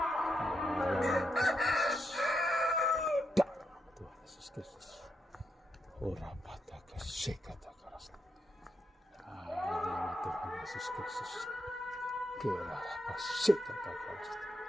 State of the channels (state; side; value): normal; both; correlation 0.82